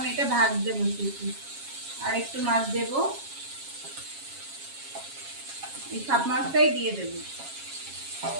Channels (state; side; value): late; left; 7.3 ms